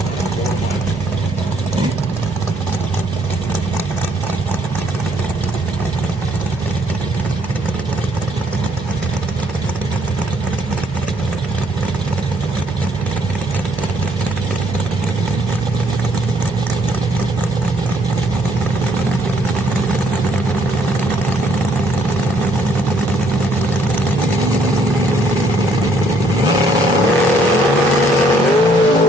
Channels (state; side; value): normal; both; correlation 0.67